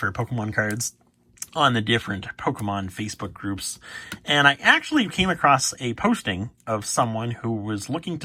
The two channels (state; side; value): identical; both; correlation 1.00